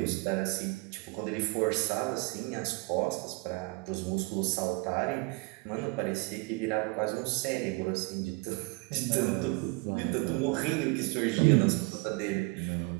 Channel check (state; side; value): quieter; left; 26.2 dB